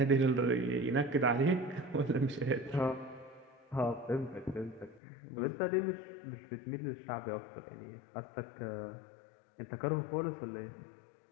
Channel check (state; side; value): drops out; right; at 5.0 s